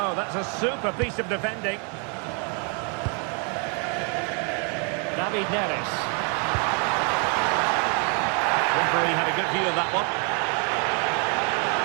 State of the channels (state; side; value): quieter; left; 38.0 dB